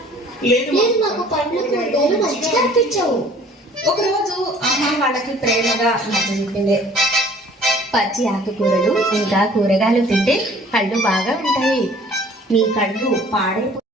నాకు పండ్లు కూరగాయలు మంచిగా అనిపించావు. ఒకరోజు అమ్మ వాళ్ళకి ప్రేమగా నచ్చజెప్పింది. పచ్చి ఆకుకూరలు ఇంకా కూరగాయలు తింటే కళ్ళు బాగా ఉంటాయి. నీ కళ్ళు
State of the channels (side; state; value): both; normal; correlation 0.53